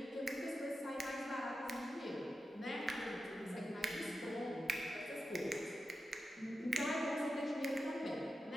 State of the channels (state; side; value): normal; both; correlation 0.91